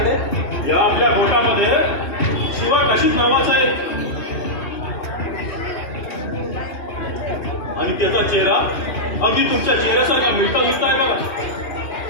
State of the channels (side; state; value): right; late; 2.8 ms